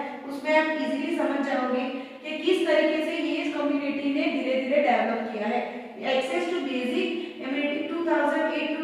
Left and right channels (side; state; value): both; identical; correlation 1.00